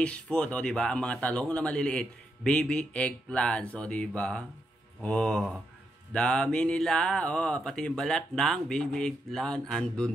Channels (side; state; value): both; normal; correlation 0.82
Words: food. O diba? Ang mga talong na maliliit. Baby eggplants, o diba? O, dami nila. O, pati yung balat ng baby eggplant